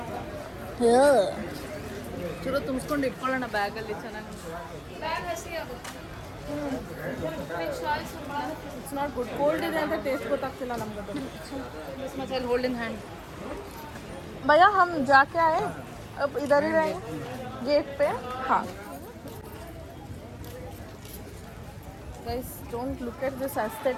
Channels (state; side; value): identical; both; correlation 1.00